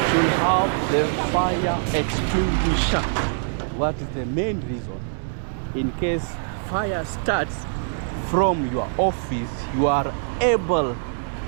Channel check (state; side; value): silent; left; digital silence